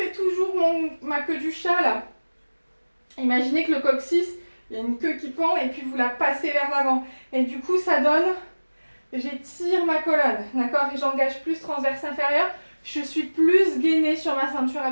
toujours ma queue du chat là. Imaginez que le coccyx, il y a une queue qui pend et puis vous la passez vers l'avant. Et du coup, ça donne, j'étire ma colonne, d'accord? Et j'engage plus transverse inférieur. Je suis plus gainée sur ma ceinture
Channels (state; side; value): inverted; both; correlation -1.00